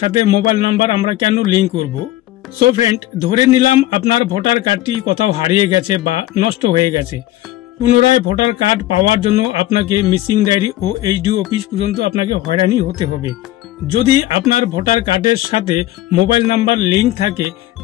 মোবাইল নাম্বার আমরা কেন লিংক করব। সো ফ্রেন্ড, ধরে নিলাম আপনার ভোটার কার্ডটি কোথাও হারিয়ে গেছে বা নষ্ট হয়ে গেছে। পুনরায় ভোটার কার্ড পাওয়ার জন্য আপনাকে মিসিং ডায়েরি ও এইচডি অফিস পর্যন্ত আপনাকে হয়রানি হতে হবে। যদি আপনার ভোটার কার্ডের সাথে মোবাইল নাম্বার লিংক থাকে,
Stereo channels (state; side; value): quieter; right; 15.4 dB